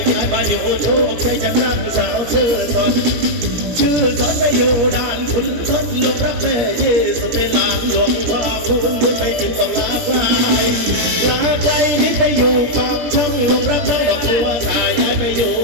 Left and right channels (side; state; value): left; late; 17 ms